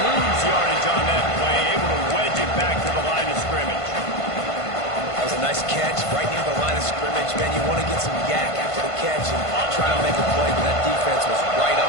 lose yardage on that play, able to wedge it back to the line of scrimmage. That was a nice catch right near the line of scrimmage. Man, you want to get some yak after the catch and try to make a play, but that defense was right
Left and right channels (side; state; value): right; late; 1.5 ms